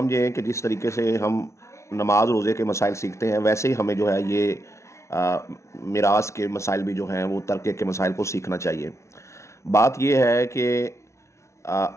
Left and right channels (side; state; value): right; late; 0.13 ms